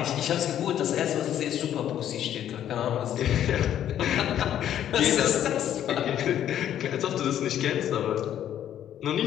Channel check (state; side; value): quieter; right; 10.8 dB